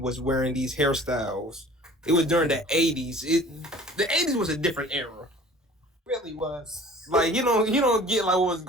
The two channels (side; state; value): both; normal; correlation 0.47